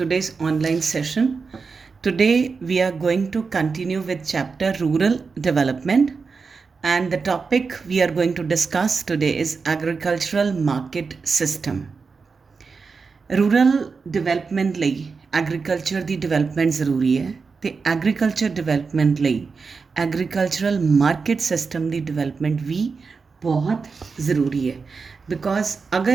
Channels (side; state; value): left; quieter; 4.9 dB